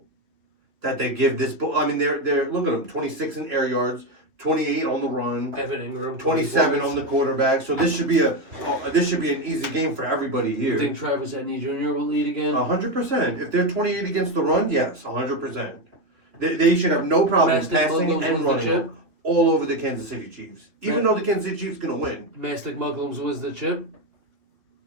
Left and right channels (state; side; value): late; left; 3.2 ms